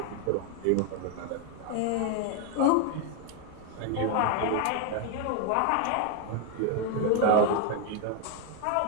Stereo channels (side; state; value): both; different; correlation 0.01